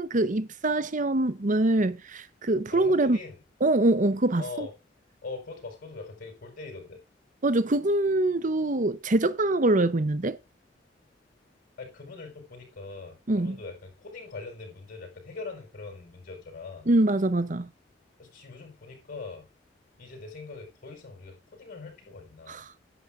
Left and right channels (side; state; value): both; normal; correlation 0.50